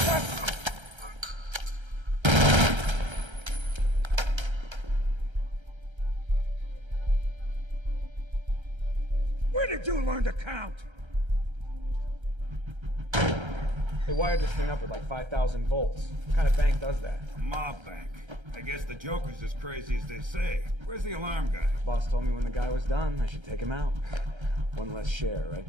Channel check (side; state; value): left; late; 1.3 ms